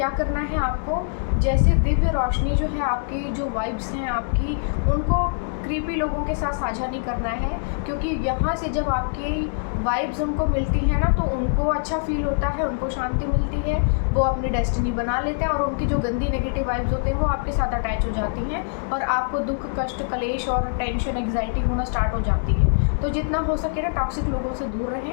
करना है आपको, जैसे दिव्य रोशनी जो है आपकी, जो वाइब्स हैं आपकी, उनको क्रीपी लोगों के साथ साझा नहीं करना है, क्योंकि यहाँ से जब आपकी वाइब्स उनको मिलती हैं ना तो उनको अच्छा फील होता है, उनको शांति मिलती है, वो अपनी डेस्टिनी बना लेते हैं, और उनकी जो गंदी नेगेटिव वाइब्स होते हैं वो आपके साथ अटैच हो जाती हैं, और आपको दुख, कष्ट, कलेश और टेंशन, एग्जाइटी होना स्टार्ट हो जाती है। तो जितना हो सके ना टॉक्सिक लोगों से दूर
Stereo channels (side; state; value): right; silent; digital silence